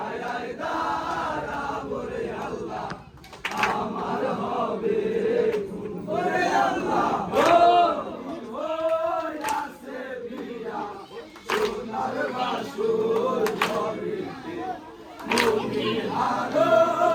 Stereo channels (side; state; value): both; identical; correlation 1.00